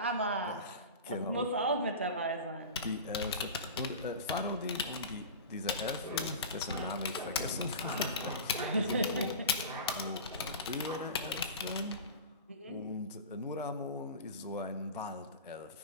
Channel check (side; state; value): both; inverted; correlation -0.31